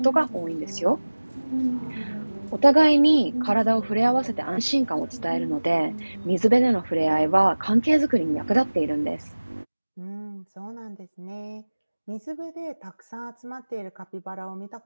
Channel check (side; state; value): both; inverted; correlation -1.00